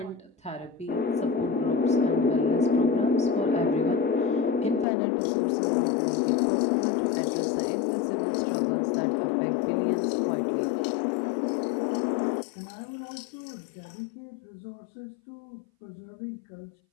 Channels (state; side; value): drops out; right; at 4.9 s